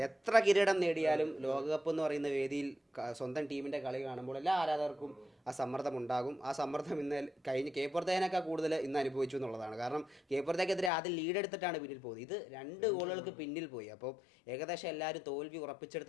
എത്ര കിരീടം നേടിയാലും ലോകകപ്പ് എന്ന് പറയുന്ന വേദിയിൽ സ്വന്തം ടീമിന്റെ കളി കാണുമ്പോൾ എല്ലാ ആരാധകർക്കും ആ സമ്മർദ്ദം ഉണ്ടാകും. ആ സമ്മർദ്ദം ഇന്ന് കഴിഞ്ഞ് കേപ്പുറത്തേനൊക്കെ കൂടുതൽ ഇന്ന് അനുഭവിച്ചു എന്നുള്ളതാണ്. കാരണം കേപ്പുറത്തേക്കെതിരെ ആദ്യം ലീഡ് എടുത്തിട്ടാണ് പിന്നിൽ പോയത്. ഇത് 2 ഗോളുകൾക്ക് പിന്നിൽ പോയി. അപ്പോൾ ഏകദേശം എല്ലാവരും തോൽവി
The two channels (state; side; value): drops out; right; at 10.9 s